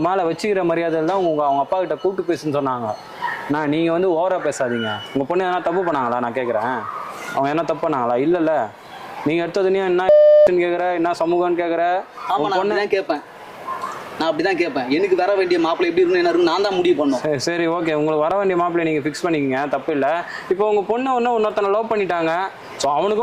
மேல வச்சுக்கிற மரியாதையில் தான் அவங்க அப்பா கிட்ட கூப்பிட்டு பேசுன்னு சொன்னாங்க. நீங்க வந்து ஓவரா பேசாதீங்க. உங்க பொண்ணு எதனா தப்பு பண்ணாங்களா? நான் கேட்குறேன், அவங்க என்ன தப்பு பண்ணாங்களா? இல்லைல்ல, நீங்க எடுத்ததுனே என்ன கேட்குற, என்ன சமூகம்னு கேட்குற? ஆமா, நான் அப்படிதான் கேட்பேன். நான் அப்படிதான் கேட்பேன். எனக்கு வர வேண்டிய மாப்பிள்ளை எப்படி இருக்கணும், என்ன இருக்கும், நான் தான் முடிவு பண்ணோம். சரி, ஓகே, உங்களுக்கு வர வேண்டிய மாப்பிள்ளை நீங்க ஃபிக்ஸ் பண்ணிக்கங்க, தப்பு இல்லை. இப்போ உங்க பொண்ணு இன்னொருத்தனை லவ் பண்ணிட்டாங்க. ஸோ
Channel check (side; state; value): both; identical; correlation 1.00